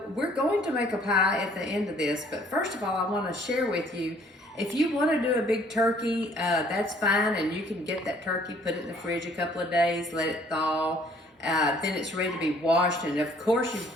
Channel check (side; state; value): both; normal; correlation 0.59